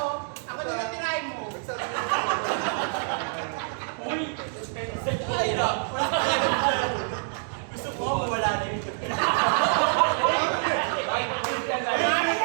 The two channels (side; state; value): left; silent; digital silence